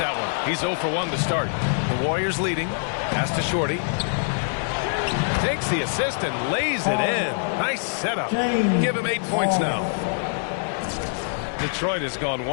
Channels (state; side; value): silent; right; digital silence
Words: one. He's 0 for 1 to start. The Warriors leading. Pass to Shorty. Takes the assist and lays it in. Nice setup. Give him 8 points now. Detroit has gone